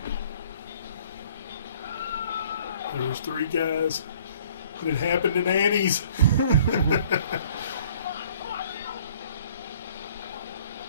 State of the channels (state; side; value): inverted; both; correlation -0.56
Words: There was 3 guys. And it happened at Annie's.